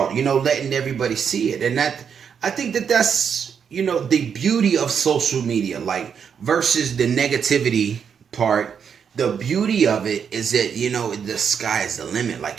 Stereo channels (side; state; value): left; quieter; 7.2 dB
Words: you know, letting everybody see it. And that, I think that that's, you know, the beauty of social media, like versus the negativity part. The beauty of it is that, you know, the sky is the limit.